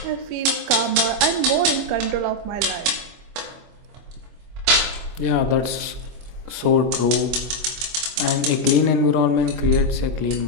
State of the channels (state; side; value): late; left; 24 ms